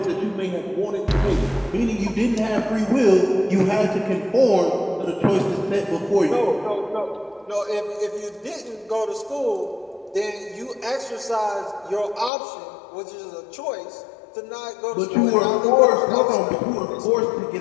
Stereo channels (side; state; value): right; drops out; at 12.3 s